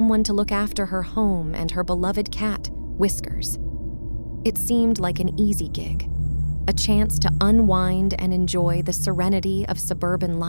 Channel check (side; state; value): both; inverted; correlation -1.00